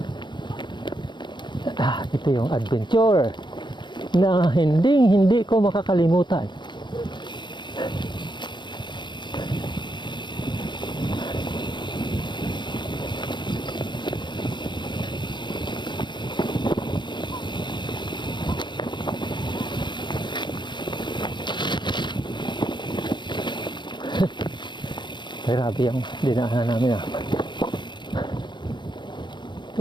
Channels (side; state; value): right; late; 0.22 ms